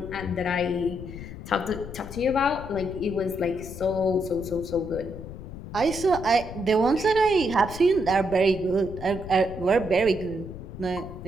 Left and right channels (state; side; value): noise; left; rumble, 11 dB below the sound